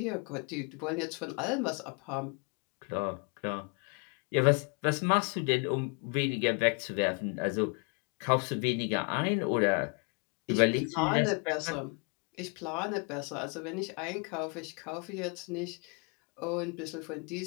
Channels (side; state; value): right; quieter; 34.2 dB